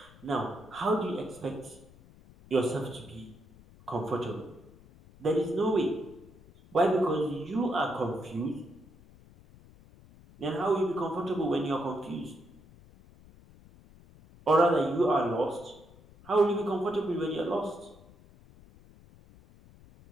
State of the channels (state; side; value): noise; left; rumble, 23 dB below the sound